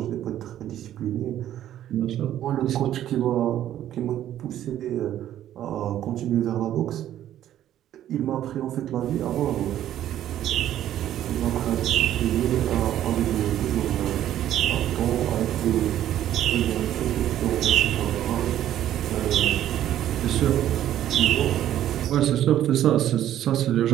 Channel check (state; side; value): quieter; left; 11.9 dB